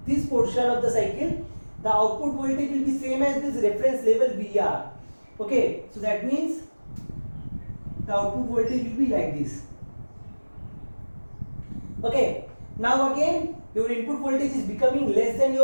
this portion of the cycle, the output voltage will be same as this reference level VR. Okay, so that means the output voltage will be like this. Okay, now again your input voltage is becoming less than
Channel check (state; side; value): inverted; both; correlation -1.00